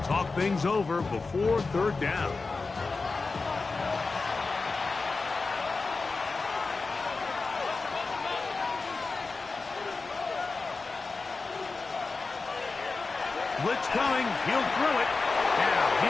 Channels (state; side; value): quieter; right; 4.0 dB